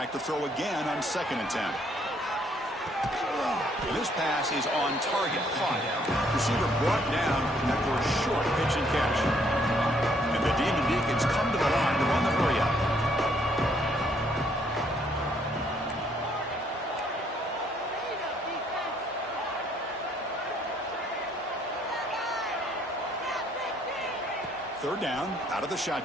to throw again on 2nd and 10. This pass is on target. Caught. Receiver brought down after a short pitch and catch. And the Demon Deacons come to the line to run the hurry up. Third down, out of the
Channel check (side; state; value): both; normal; correlation 0.67